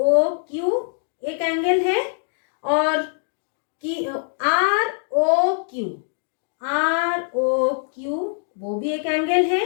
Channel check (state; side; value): silent; right; digital silence